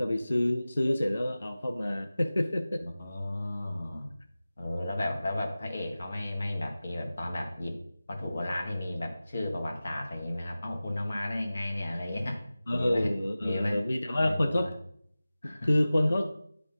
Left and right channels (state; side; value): inverted; both; correlation -0.96